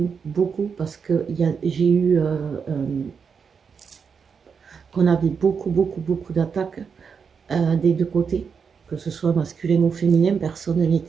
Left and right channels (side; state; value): left; quieter; 6.1 dB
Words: beaucoup parce que j'ai eu qu'on avait beaucoup d'attaques des deux côtés, que ce soit masculin ou féminin, personne n'est